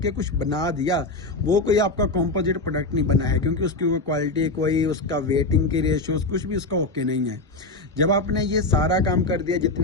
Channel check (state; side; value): quieter; right; 3.0 dB